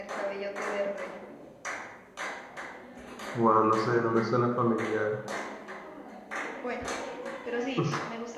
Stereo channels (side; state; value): both; identical; correlation 1.00